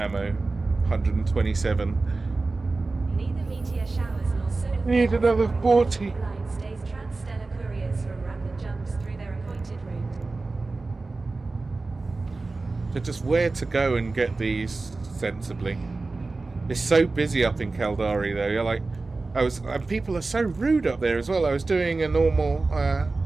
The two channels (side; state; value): left; quieter; 3.5 dB